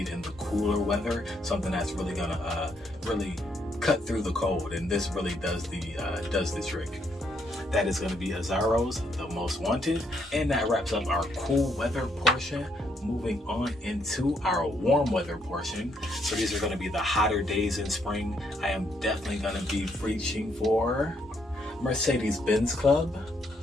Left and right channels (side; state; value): both; normal; correlation 0.73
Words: in the cooler weather. Something that's really gonna really cut through the cold, and this really does the trick. That is going to be Azzaro's The Most Wanted, and that wraps up our cool weather portion. moving on into our warm weather portion. So these are going to be the hotter days in spring. I am definitely going to be reaching for Mercedes-Benz Club.